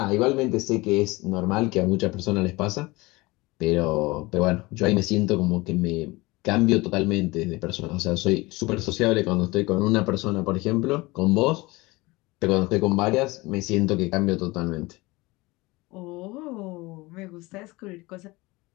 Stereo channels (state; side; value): quieter; right; 22.5 dB